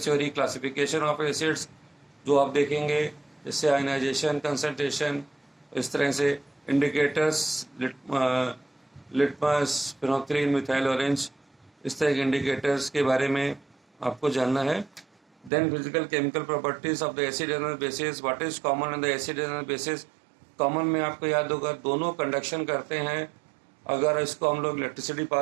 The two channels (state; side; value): drops out; left; at 15.5 s